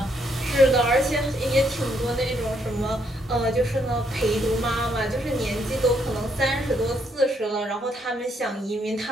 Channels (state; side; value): normal; both; correlation 0.73